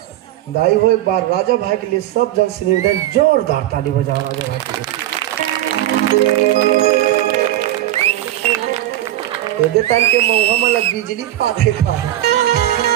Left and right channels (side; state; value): left; quieter; 13.9 dB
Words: दाई हो एक बार राजा भाई के लिए सब जन से निवेदन जोरदार ताली बजाओ राजा भाई के लिए तान के मुंह में लग बिजली पाते था